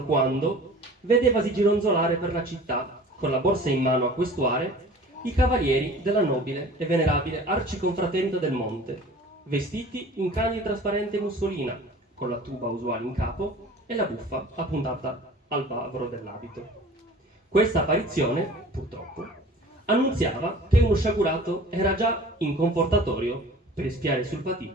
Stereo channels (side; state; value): both; normal; correlation 0.44